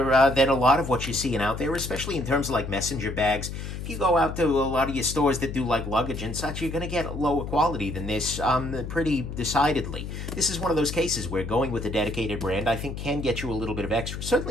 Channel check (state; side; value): noise; left; hum, 7 dB below the sound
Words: than a lot of what you're seeing out there, especially in terms of, like, messenger bags. If you go out to a lot of your stores that do, like, luggage and such, you're going to get lower quality than this pretty decidedly. This is one of those cases where going with a dedicated brand, I think, can get you a little bit of extra.